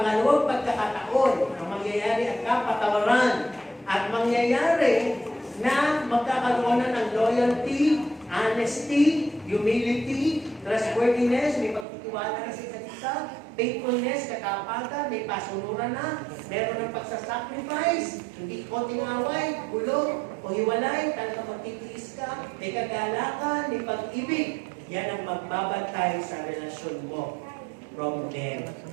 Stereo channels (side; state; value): left; drops out; at 11.9 s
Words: pagkakataon ang mangyayari at kapatawaran. At mangyayari na magkakaroon na ng loyalty, honesty, humility, trustworthiness, may pagtitiwala na sa isa't isa, faithfulness, katapagan, may pasunuran na, meron ng pagsasacrifice, hindi konting away, gulo, o hiwalay, talagang magtitiis ka, may kagalakan, may pag-ibig. Yan ang magbabantay sa relasyon mo from them